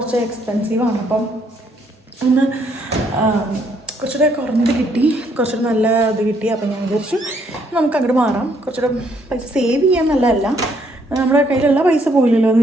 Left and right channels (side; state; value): both; normal; correlation 0.69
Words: എക്സ്പെൻസീവാണ്. അപ്പം ഒന്ന് കുറച്ചുകൂടെ കുറഞ്ഞത് കിട്ടി, കുറച്ചുകൂടെ നല്ല ഇത് കിട്ടി. അപ്പം ഞാൻ വിചാരിച്ചു നമുക്ക് അങ്ങോട്ട് മാറാം. കുറച്ചുകൂടെ പൈസ സേവ് ചെയ്യാൻ നല്ലതല്ല, നമ്മുടെ കയ്യിലുള്ള പൈസ പോയില്ലല്ലോ